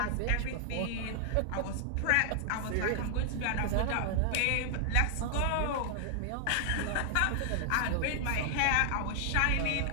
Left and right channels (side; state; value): both; different; correlation 0.00